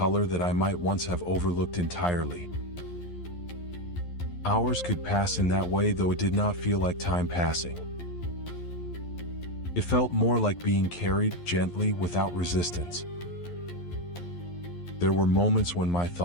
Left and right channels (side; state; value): right; late; 11 ms